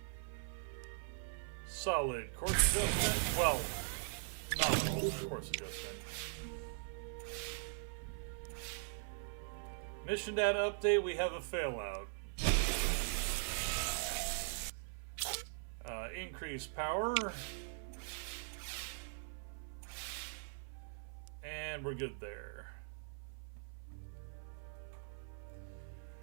Solid course adjustment. Well, nominal course adjustment. Mission data update, we have a failout. Increased power. And we're good there.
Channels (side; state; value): left; silent; 50 dB below the other